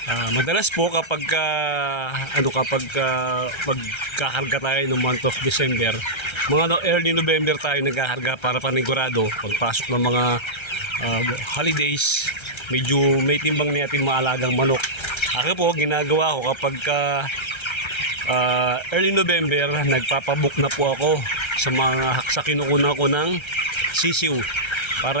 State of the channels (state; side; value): late; right; 1.3 ms